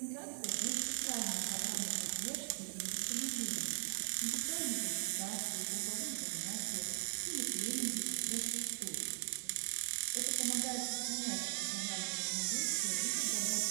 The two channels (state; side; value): silent; left; digital silence